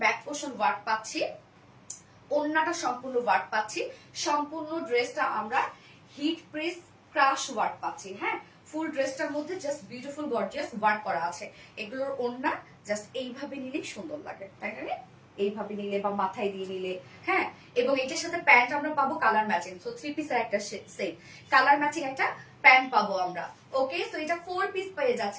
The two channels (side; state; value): both; identical; correlation 1.00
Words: back portion work পাচ্ছি, ওন্নাটা সম্পূর্ণ ওয়ার্ক পাচ্ছি, সম্পূর্ণ ড্রেসটা আমরা হিট প্রেস ক্রাশ ওয়ার্ক পাচ্ছি। হ্যাঁ, ফুল ড্রেসটার মধ্যে জাস্ট বিউটিফুল গর্জিয়াস ওয়ার্ক করা আছে। এগুলোর ওন্না জাস্ট এইভাবে নিলেই সুন্দর লাগে, তাই না? এইভাবে নিলে বা মাথায় দিয়ে নিলে, হ্যাঁ। এবং এটার সাথে প্যান্ট আমরা পাবো কালার ম্যাচিং, সো 3 পিসের একটা সেট কালার ম্যাচিং একটা প্যান্ট পাবো আমরা। ওকে, সো এটা 4 পিস পেয়ে